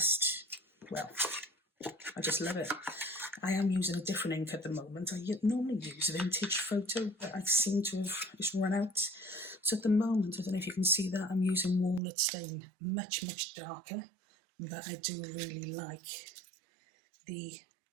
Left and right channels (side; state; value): left; drops out; at 12.0 s